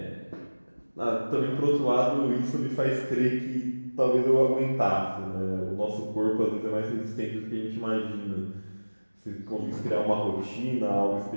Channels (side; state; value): both; inverted; correlation -1.00